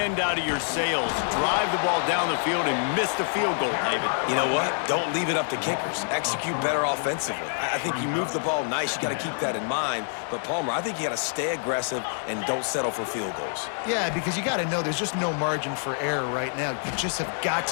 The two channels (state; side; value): silent; right; 61 dB below the other